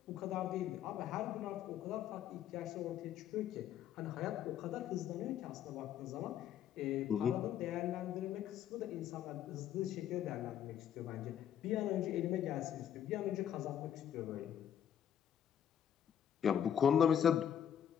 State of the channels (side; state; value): right; quieter; 9.5 dB